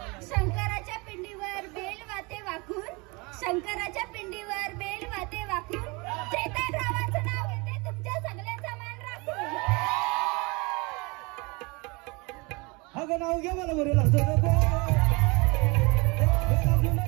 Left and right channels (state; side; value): quieter; left; 27.4 dB